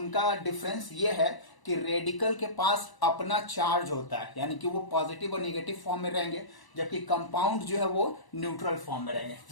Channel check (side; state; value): right; late; 1.0 ms